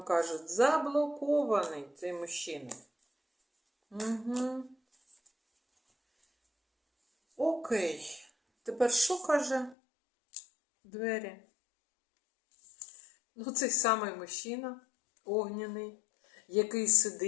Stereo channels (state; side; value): drops out; right; at 9.8 s